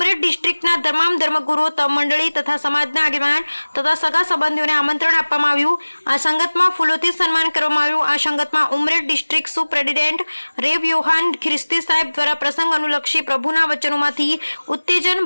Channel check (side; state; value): both; inverted; correlation -1.00